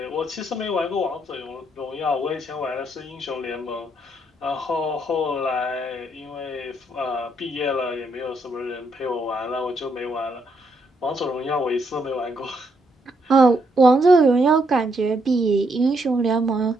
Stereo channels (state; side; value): normal; both; correlation 0.75